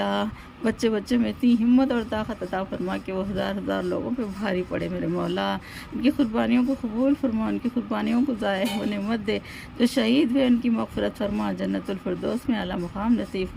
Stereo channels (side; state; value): both; identical; correlation 1.00